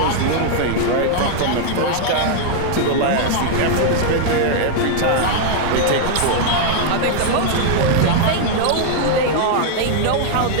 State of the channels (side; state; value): both; different; correlation 0.00